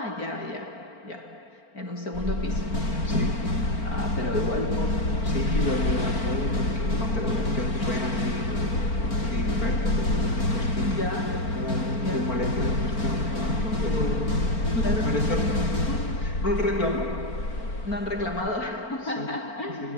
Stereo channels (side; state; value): right; late; 4.4 ms